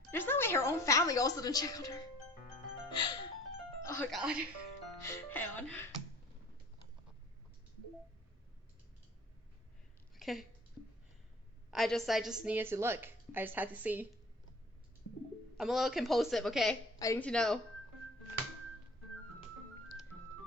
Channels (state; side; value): normal; both; correlation 0.48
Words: There's no way her own family also didn't check on her. Oh god. Hang on. Okay. I just needed to look. I just had to see. I'm a little compulsive, okay? I need to know.